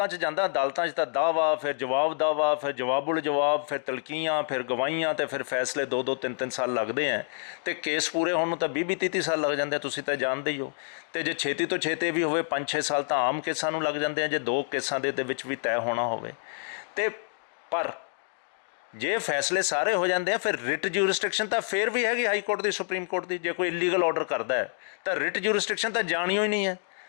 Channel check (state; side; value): silent; right; digital silence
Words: 'ਚ ਜਾਂਦਾ, ਅਦਾਲਤਾਂ 'ਚ ਤਾਂ ਦਾਅਵਾ, ਫਿਰ ਜਵਾਬ ਦਾਅਵਾ, ਫਿਰ ਜਵਾਬੁਲ ਜਵਾਬ, ਫਿਰ ਤਲਕੀਆਂ, ਫਿਰ ਗਵਾਹੀਆਂ, ਅਤੇ ਫਿਰ ਫੈਸਲੇ 2-2 3-3 ਸਾਲ ਲੱਗਦੇ ਹੈ। ਅਤੇ ਕੇਸ ਪੂਰੇ ਹੋਣ ਨੂੰ ਤਾਂ 20-30 ਸਾਲ ਲੱਗ ਜਾਂਦੇ, ਤੁਸੀਂ ਤਾਂ ਜਾਣਦੇ ਹੀ ਹੋ। ਅਤੇ ਜੇ ਛੇਤੀ ਤੋਂ ਛੇਤੀ ਵੀ ਹੋਵੇ 5-6 ਸਾਲ ਤਾਂ ਆਮ ਕੇਸਾਂ ਨੂੰ ਲੱਗ ਜਾਂਦੇ ਆ, ਜੇ 2 ਕੇਸਾਂ ਦੇ ਵਿੱਚ ਵੀ ਤੈਅ ਹੋਣਾ ਹੋਵੇ। ਅਤੇ ਪਰ ਜੇ ਫੈਸਲੇ ਸਾਰੇ ਹੋ ਜਾਂਦੇ ਆ, ਫਿਰ ਰਿਟ ਜੂਰਿਸਡਿਕਸ਼ਨ ਤਾਂ ਫਿਰ ਵੀ ਹੈਗੀ ਹਾਈ ਕੋਰਟ ਦੀ, ਸੁਪਰੀਮ ਕੋਰਟ ਦੀ। ਜੇ ਕੋਈ ਇਲੀਗਲ ਆਰਡਰ ਕਰਦਾ ਹੈ ਤਾਂ ਰਿਟ ਜੂਰਿਸਡਿਕਸ਼ਨ ਤਾਂ ਜਾਣਿਓ ਹੀ ਨਹੀਂ ਹੈ।